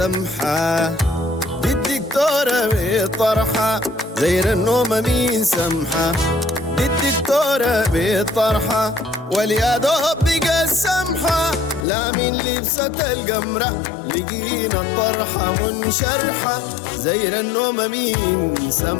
دي الدكتورة بطرحة. زير النوم مين سمحة دي الدكتورة بطرحة. واليا دوب بقى السمحة لا من لبسة القمرة لقينا الطرحة منشرحة. زير النوم مين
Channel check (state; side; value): drops out; right; at 11.9 s